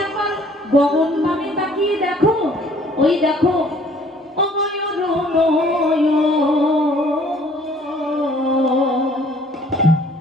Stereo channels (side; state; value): both; normal; correlation 0.57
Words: একবার গগন পানে তাকিয়ে দেখো। ওই দেখো, অময় অরুণয়